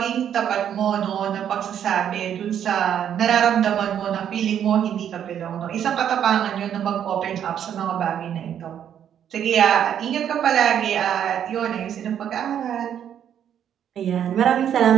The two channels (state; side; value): quieter; left; 9.4 dB